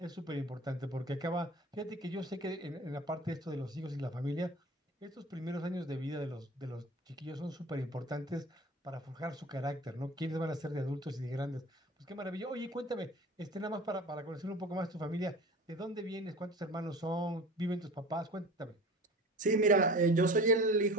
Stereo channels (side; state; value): both; normal; correlation 0.39